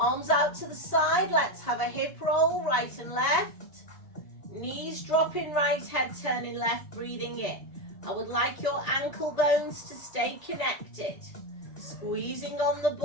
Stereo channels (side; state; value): right; late; 1.8 ms